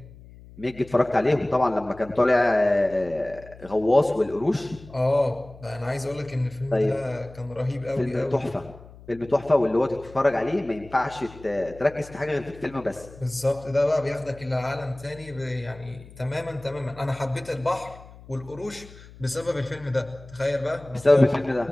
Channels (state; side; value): noise; left; hum, 20 dB below the sound